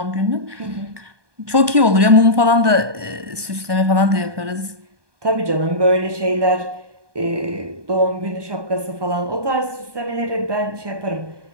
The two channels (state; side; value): late; left; 1.2 ms